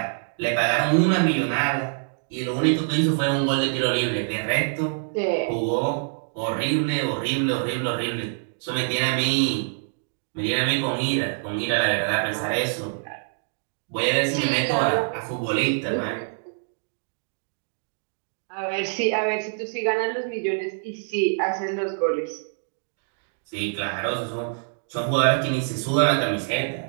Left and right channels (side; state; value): left; silent; digital silence